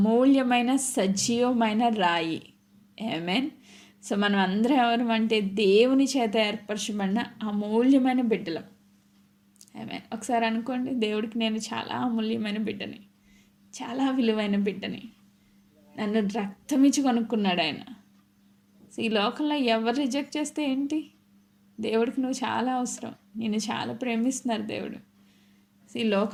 సజీవమైన రాయి. ఆమేన్. సో మనం అందరం ఎవరు అంటే దేవుని చేత ఏర్పరచబడిన అమూల్యమైన బిడ్డలం. ఆమేన్. ఒకసారి అనుకోండి, దేవుడికి నేను చాలా అమూల్యమైన బిడ్డని, చాలా విలువైన బిడ్డని. నన్ను రక్తమిచ్చి కొనుక్కున్నాడు ఆయన. సో ఈ లోకంలో ఎవరు రిజెక్ట్ చేస్తే ఏంటి, దేవుడికి నువ్వు చాలా అవసరం, నిన్ను చాలా ప్రేమిస్తున్నారు దేవుడు. సో ఈ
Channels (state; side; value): identical; both; correlation 1.00